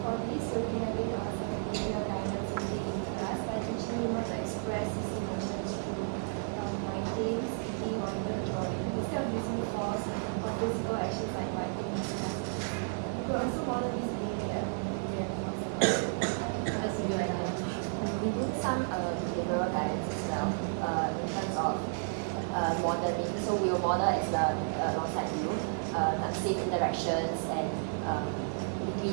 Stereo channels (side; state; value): left; silent; digital silence